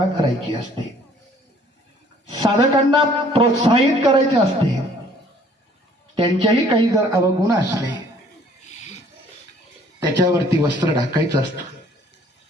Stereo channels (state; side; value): normal; both; correlation 0.58